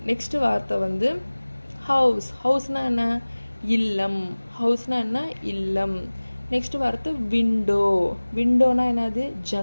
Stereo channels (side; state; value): both; inverted; correlation -1.00